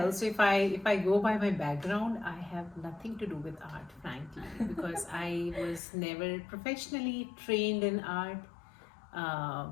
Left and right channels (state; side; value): drops out; right; at 5.8 s